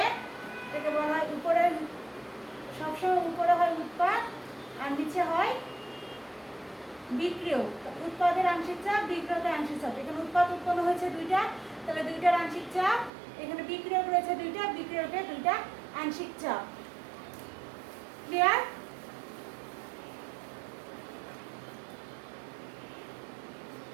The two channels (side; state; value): left; drops out; at 13.1 s